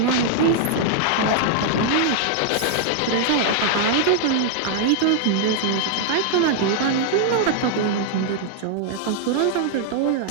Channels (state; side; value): different; both; correlation -0.01